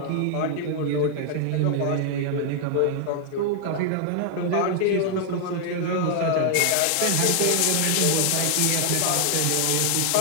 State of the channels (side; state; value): both; different; correlation 0.00